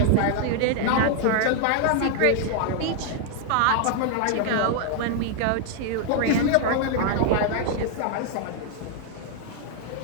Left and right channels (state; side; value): different; both; correlation 0.00